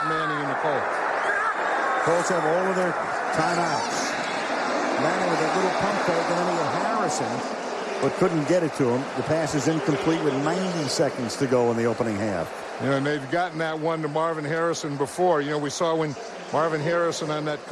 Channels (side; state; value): both; identical; correlation 1.00